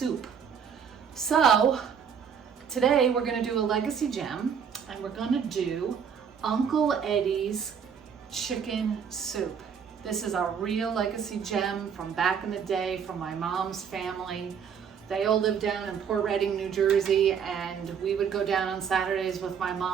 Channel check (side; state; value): left; quieter; 7.2 dB